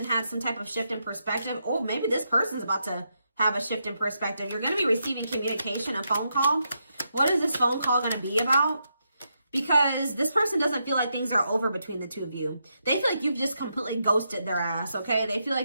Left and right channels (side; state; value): both; inverted; correlation -0.82